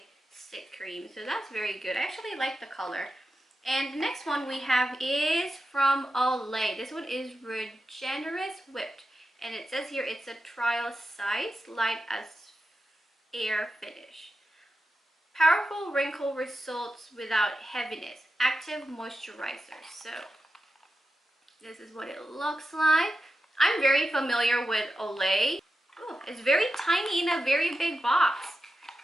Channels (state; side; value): normal; both; correlation 0.90